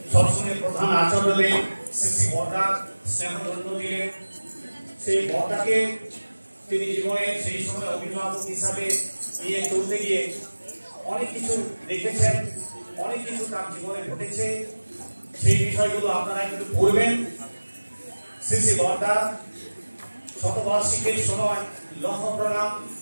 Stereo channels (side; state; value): both; inverted; correlation -1.00